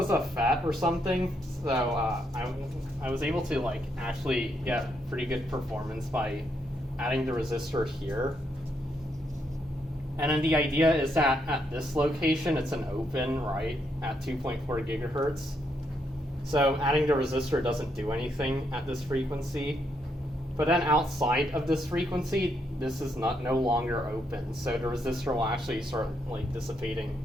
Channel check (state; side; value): normal; both; correlation 0.77